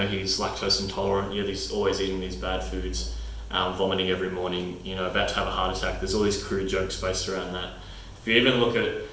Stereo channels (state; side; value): identical; both; correlation 1.00